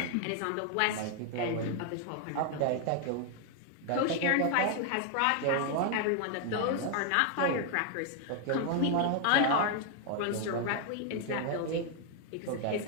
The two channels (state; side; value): different; both; correlation 0.00